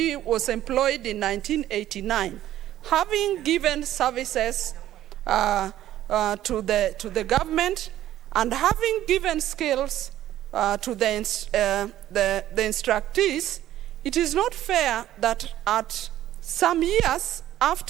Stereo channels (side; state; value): left; quieter; 13.0 dB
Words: was employed in 1989. Having given services to the government and having given skills to the instructees, it is not fair that at some years